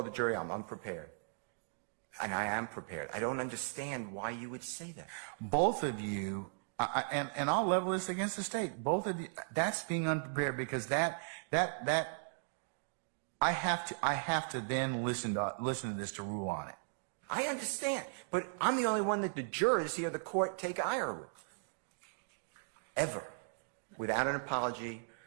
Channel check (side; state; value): left; silent; digital silence